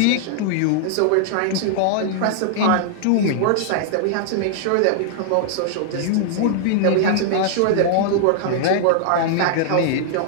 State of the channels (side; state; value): both; different; correlation -0.01